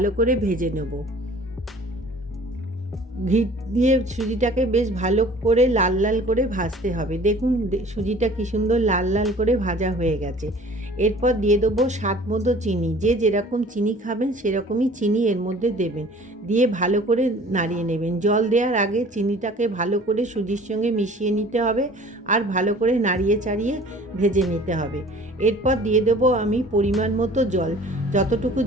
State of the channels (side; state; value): both; normal; correlation 0.49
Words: করে ভেজে নেব। ঘি দিয়ে সুজিটাকে বেশ ভালো করে লাল লাল করে ভাজতে হবে। দেখুন সুজিটা কী সুন্দর লাল লাল করে ভাজা হয়ে গেছে। এরপর দিয়ে দেবো স্বাদ মতো চিনি। যে যেরকম চিনি খাবেন সেরকমই চিনি এর মধ্যে দেবেন। দিয়ে ভালো করে নাড়িয়ে নেবেন। জল দেওয়ার আগে চিনিটাকে ভালো করে সুজির সঙ্গে মিশিয়ে নিতে হবে আর ভালো করে নাড়িয়ে চাড়িয়ে ভেজে নিতে হবে। এরপর দিয়ে দেবো আমি পরিমাণ মতো জল। যতটুকু